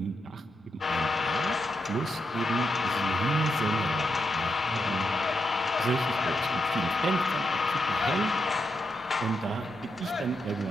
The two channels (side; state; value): both; normal; correlation 0.83